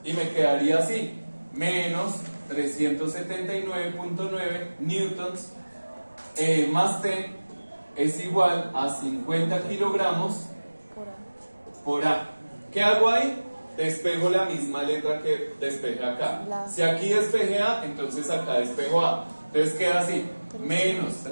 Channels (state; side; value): inverted; both; correlation -1.00